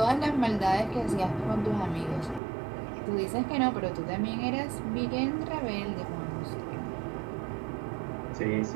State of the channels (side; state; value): left; drops out; at 2.4 s